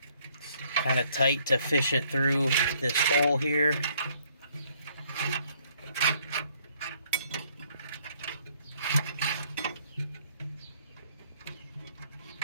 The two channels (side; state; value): both; inverted; correlation -0.65